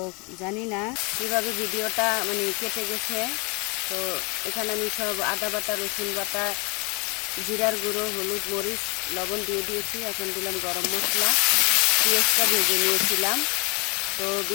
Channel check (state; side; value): quieter; right; 30.5 dB